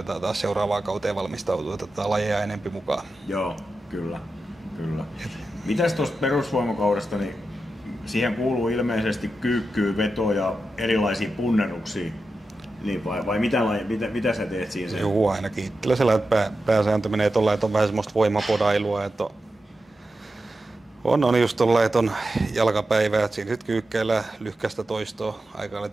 taas seuraavaan kauteen valmistautua, että otetaan lajeja enempi mukaan. Kyllä. Mitäs tuosta perusvoimakaudesta, niin siihen kuuluu ilmeisesti kyykkyä, vetoa ja erilaisia punneruksia. Niin vai mitä sä teet siinä? Joo, ainakin itsellä sellainen, että pääsääntö menee tuolla, että on vähän semmoista voimapodailua, että on just tuolla, että on jalkapäivää, että siinä sitten kyykkeillä lyhkäistä toistoa, aika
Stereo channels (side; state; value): both; normal; correlation 0.90